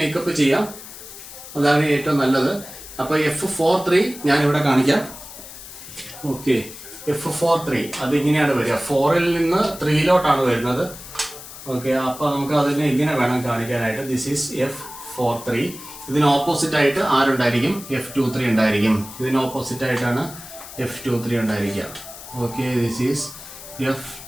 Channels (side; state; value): left; noise; hiss, 14 dB below the sound